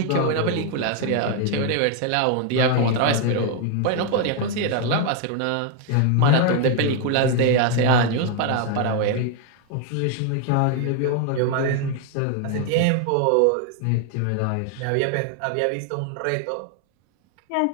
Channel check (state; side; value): different; both; correlation 0.00